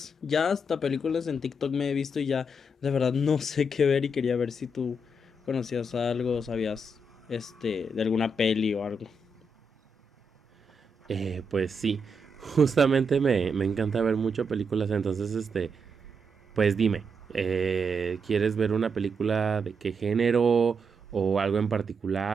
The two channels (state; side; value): normal; both; correlation 0.81